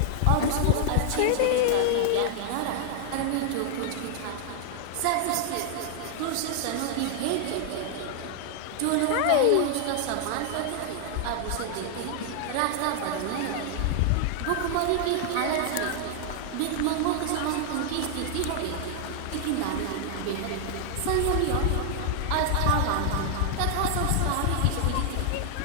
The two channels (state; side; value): different; both; correlation 0.00